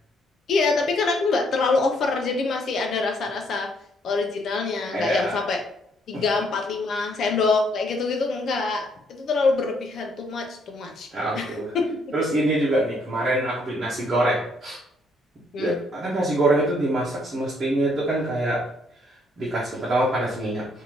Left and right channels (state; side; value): normal; both; correlation 0.69